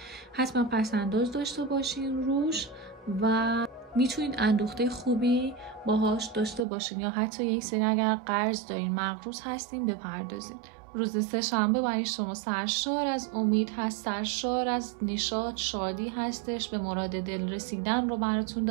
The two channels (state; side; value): drops out; left; at 6.7 s